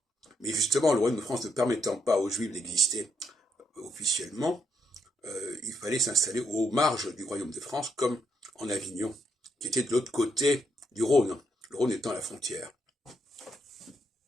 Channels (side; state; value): both; normal; correlation 0.77